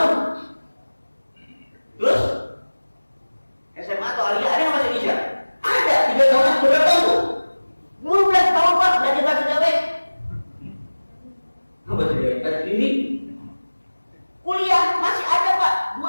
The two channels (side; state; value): both; inverted; correlation -1.00